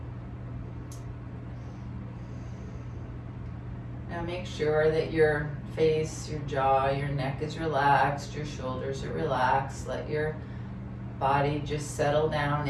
Now make sure that your face, your jaw, your neck is relaxed, your shoulders are relaxed. Let your body just settle down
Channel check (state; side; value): identical; both; correlation 1.00